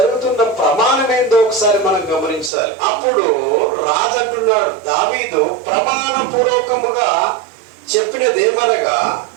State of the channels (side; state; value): left; drops out; at 2.5 s